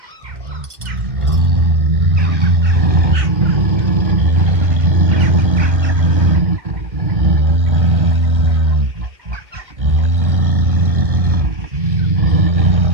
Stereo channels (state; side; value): late; left; 1.9 ms